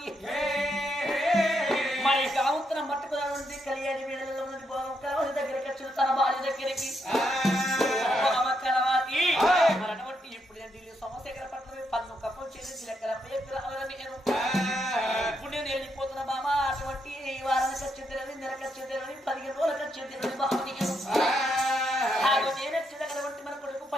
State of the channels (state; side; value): normal; both; correlation 0.79